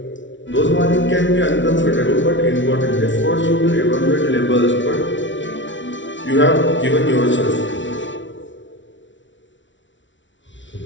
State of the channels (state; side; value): late; right; 0.55 ms